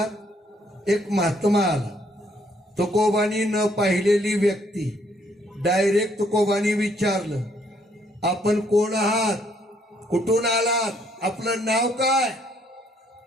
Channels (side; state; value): both; normal; correlation 0.68